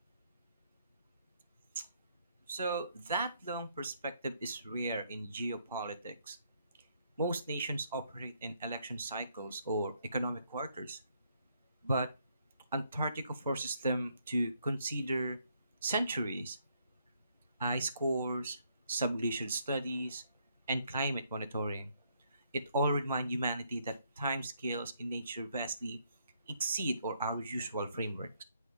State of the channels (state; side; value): inverted; both; correlation -0.72